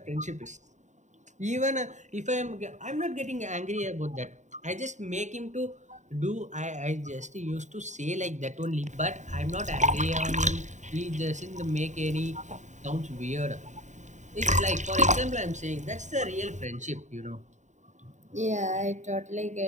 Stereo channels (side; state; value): left; late; 0.34 ms